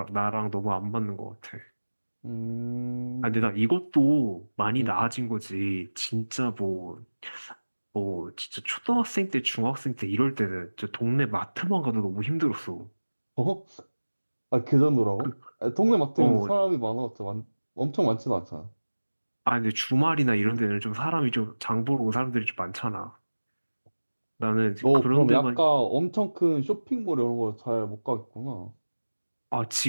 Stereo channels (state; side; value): inverted; both; correlation -1.00